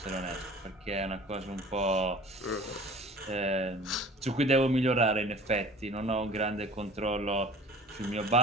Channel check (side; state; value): both; normal; correlation 0.44